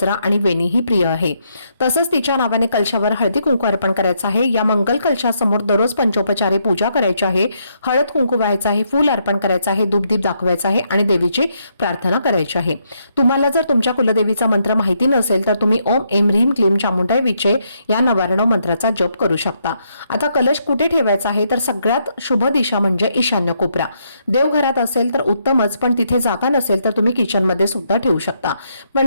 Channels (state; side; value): inverted; both; correlation -0.76